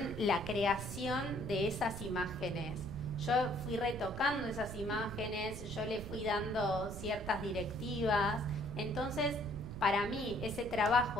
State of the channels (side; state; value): right; noise; rumble, 9 dB below the sound